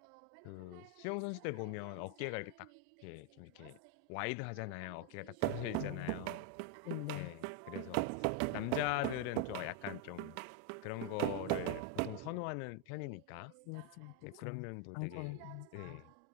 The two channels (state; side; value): different; both; correlation 0.01